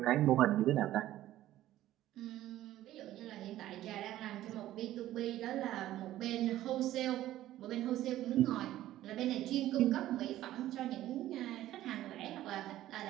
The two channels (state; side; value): quieter; left; 14.1 dB